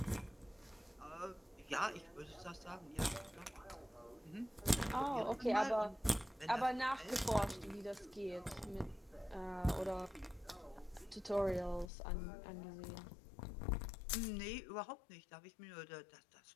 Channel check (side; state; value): right; drops out; at 11.9 s